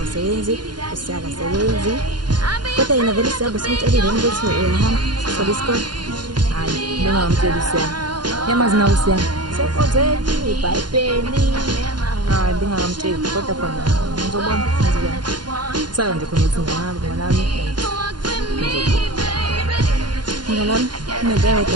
usiyakasebenzi kodwa yena vele siyabe simtshelile ukuthi uyahamba sobe isikole. Hayi bengamtsheli usiyana yamazi nawe usiyana sekozeni ibhayibheli. Hayi bengamtsheli kodwa khona ngizobona ngizobona saka nje khona ukuthi ngihamba ngalami ngalami nento eyodwa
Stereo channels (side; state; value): left; late; 0.71 ms